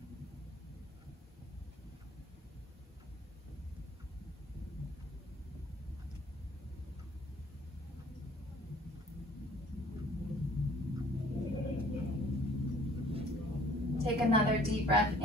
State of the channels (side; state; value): both; normal; correlation 0.55